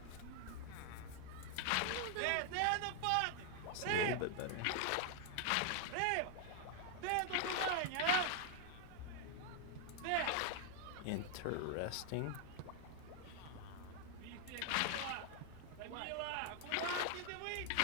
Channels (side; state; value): both; different; correlation 0.00